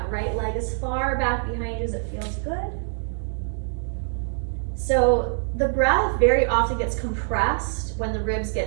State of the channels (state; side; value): silent; left; 62 dB below the other